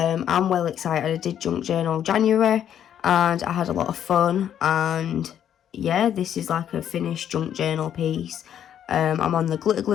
well excited. I did Junk Journal January and I had a lot of fun, and yeah, this is like a finished Junk Journal piece. I'm on the glitter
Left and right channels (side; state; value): right; quieter; 9.8 dB